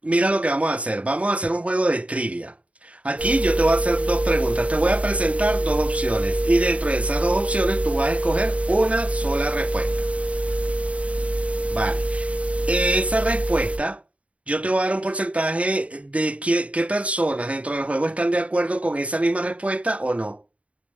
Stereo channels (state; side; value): late; left; 0.065 ms